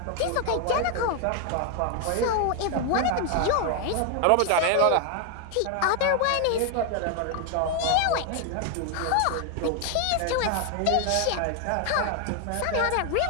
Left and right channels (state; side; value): different; both; correlation 0.01